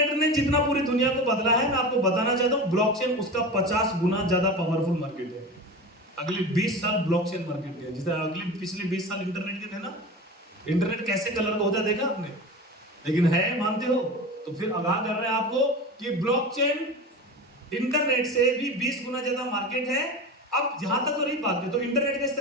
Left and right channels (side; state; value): both; normal; correlation 0.30